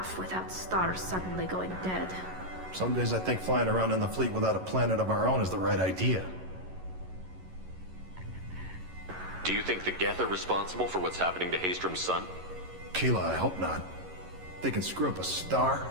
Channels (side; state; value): left; late; 11 ms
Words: without stars suddenly going dead. Some days I think flying around in the fleet without a planet of our own is the right idea. Do you think the Geth are responsible for what's happening to Haystrom's sun? Keela, I hope not. If they can screw up a star,